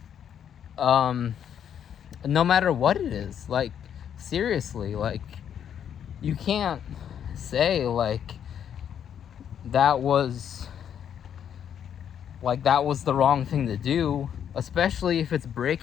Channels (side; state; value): right; quieter; 8.9 dB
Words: no matter what it is. Like, seriously, like, you can't say like that was the wrong thing to do, especially if it's